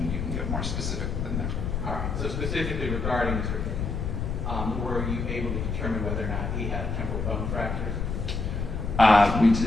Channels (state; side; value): noise; left; rumble, 2 dB below the sound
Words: you can get more specific than that. All right. So specifically regarding Mr. Finken, were you able to determine whether or not he had temporal bone fractures?